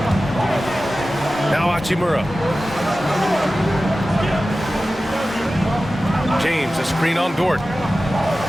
Now Hachimura. James, a screen on Dort.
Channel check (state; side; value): normal; both; correlation 0.95